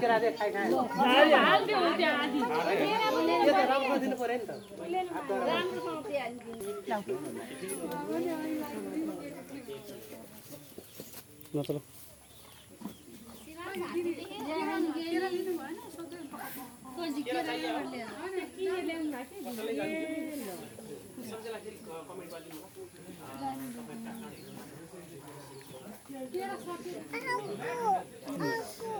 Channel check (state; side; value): identical; both; correlation 1.00